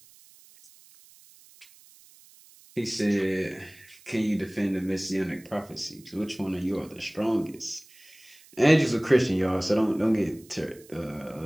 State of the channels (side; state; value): right; noise; hiss, 25 dB below the sound